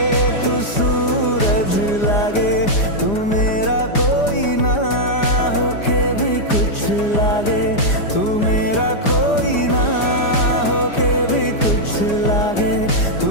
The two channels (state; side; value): late; right; 5.0 ms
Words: तू सूरज लागे, तू मेरा कोई ना होके भी कुछ लागे, तू मेरा कोई ना होके भी कुछ लागे,